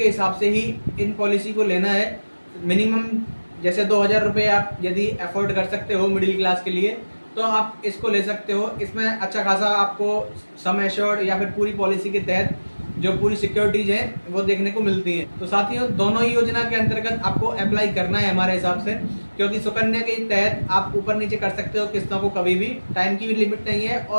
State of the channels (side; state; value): both; inverted; correlation -1.00